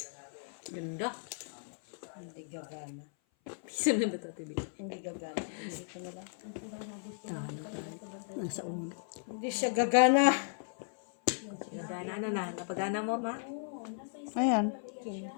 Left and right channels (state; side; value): silent; right; 54 dB below the other